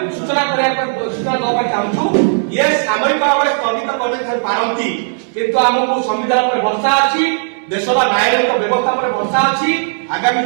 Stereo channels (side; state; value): left; silent; 66 dB below the other